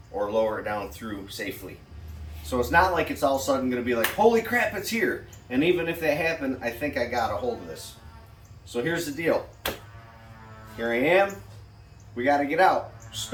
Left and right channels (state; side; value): identical; both; correlation 1.00